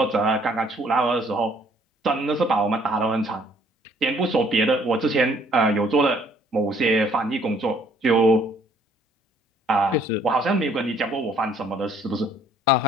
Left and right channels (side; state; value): both; normal; correlation 0.61